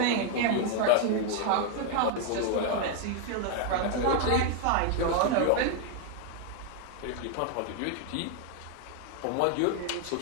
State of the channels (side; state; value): both; different; correlation 0.00